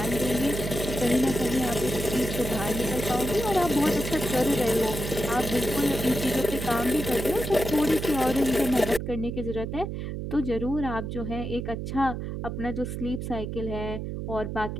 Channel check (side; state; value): right; noise; hum, 5 dB below the sound